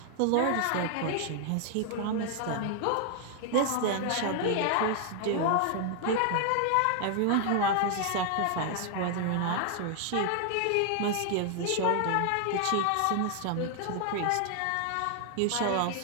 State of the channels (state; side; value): different; both; correlation 0.00